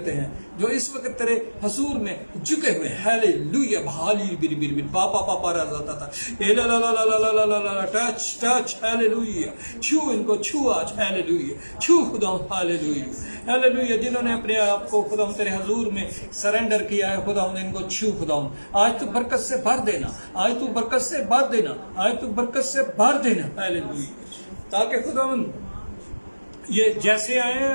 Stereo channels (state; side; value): inverted; both; correlation -1.00